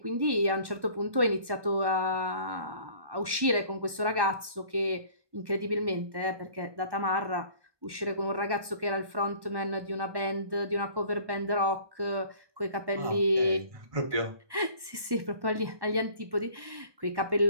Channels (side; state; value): left; late; 1.1 ms